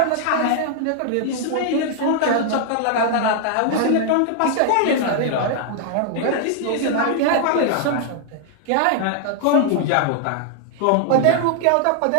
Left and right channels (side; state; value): both; different; correlation 0.00